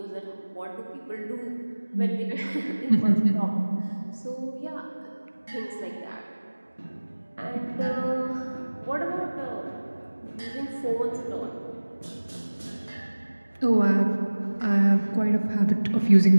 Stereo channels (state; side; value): inverted; both; correlation -1.00